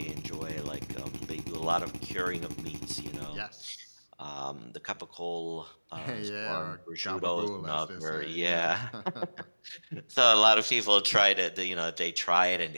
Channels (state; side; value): inverted; both; correlation -1.00